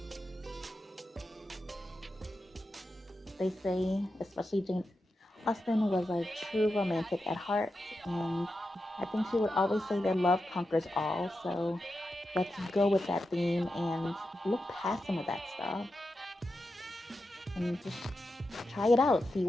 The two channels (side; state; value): both; normal; correlation 0.89